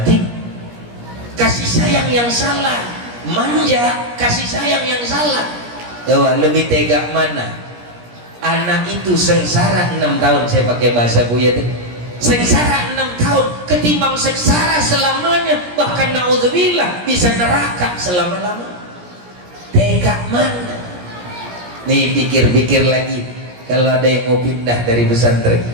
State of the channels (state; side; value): late; left; 17 ms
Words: kasih sayang yang salah, manja, kasih sayang yang salah. Coba lebih tega mana? Anak itu sengsara 6 tahun, saya pakai bahasa Buya tadi, sengsara 6 tahun ketimbang sengsara selamanya, bahkan naudzubillah bisa neraka selama-lama. Tega mana? Nih pikir-pikir lagi, kalau ada yang mau pindah dari pesantren,